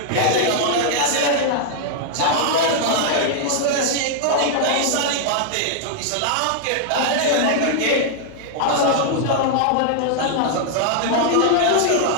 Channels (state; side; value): different; both; correlation -0.01